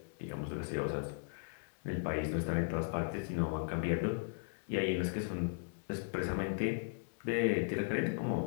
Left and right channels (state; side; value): silent; right; digital silence